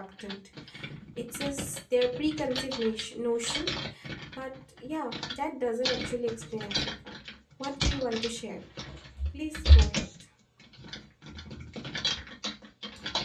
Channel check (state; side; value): identical; both; correlation 1.00